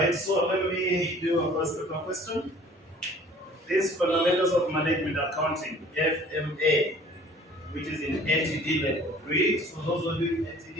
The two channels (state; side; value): normal; both; correlation 0.50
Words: so let me do a first paper question. This Fundamentals of Management Accounting, FMA, which is in ATD level 3. So those are doing